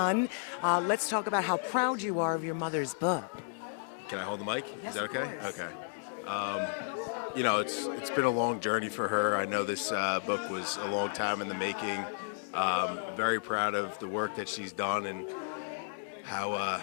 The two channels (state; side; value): silent; right; digital silence